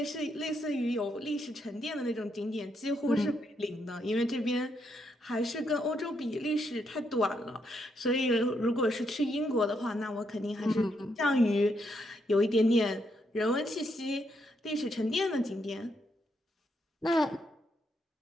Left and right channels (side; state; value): both; normal; correlation 0.77